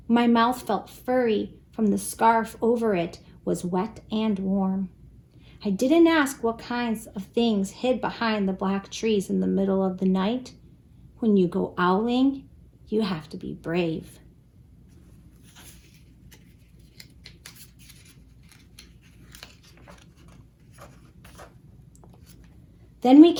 My mouth felt furry from the scarf over it was wet and warm. I didn't ask what kinds of things hid behind the black trees in the middle of the night. When you go owling, you have to be brave. Then we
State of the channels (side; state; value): both; identical; correlation 1.00